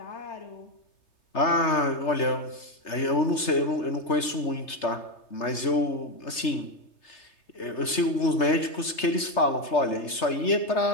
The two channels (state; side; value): late; right; 3.3 ms